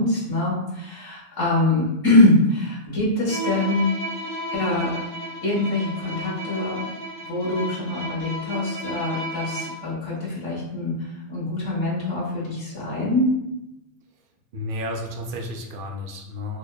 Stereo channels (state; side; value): late; left; 2.5 ms